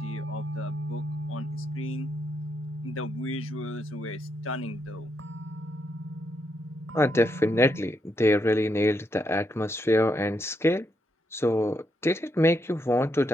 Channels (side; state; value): both; normal; correlation 0.79